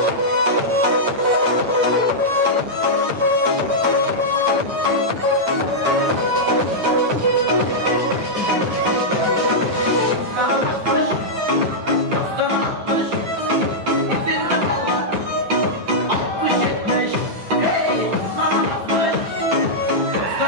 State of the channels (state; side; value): late; left; 8.9 ms